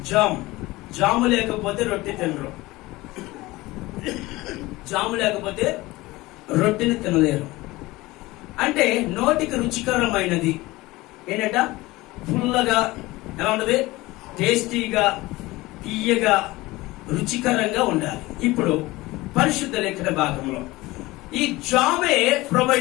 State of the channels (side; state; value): right; quieter; 20.0 dB